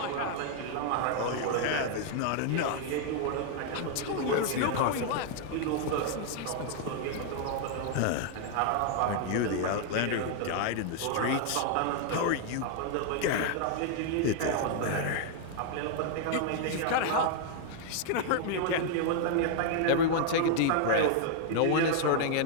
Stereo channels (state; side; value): different; both; correlation 0.00